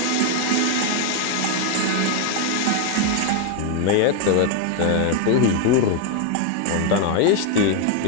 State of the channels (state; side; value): different; both; correlation 0.01